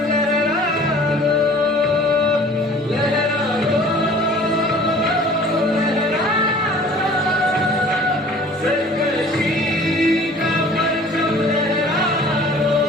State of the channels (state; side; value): normal; both; correlation 0.49